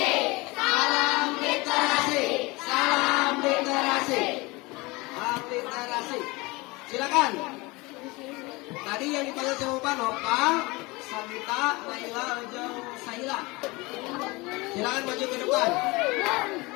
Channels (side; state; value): right; quieter; 24.0 dB